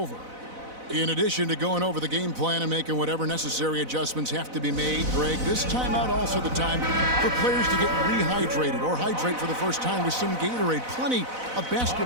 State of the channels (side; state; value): left; late; 4.0 ms